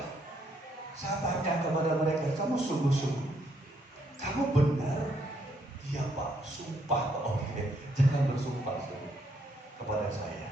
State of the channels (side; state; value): both; normal; correlation 0.72